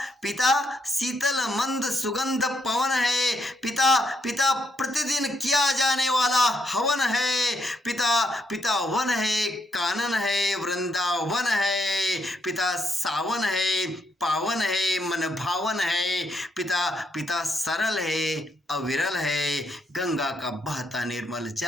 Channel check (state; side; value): normal; both; correlation 0.77